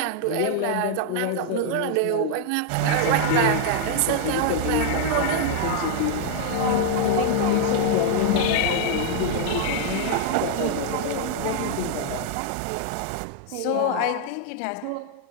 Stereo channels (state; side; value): different; both; correlation 0.00